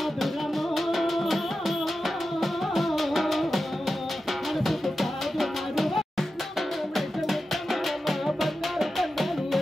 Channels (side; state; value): both; normal; correlation 0.92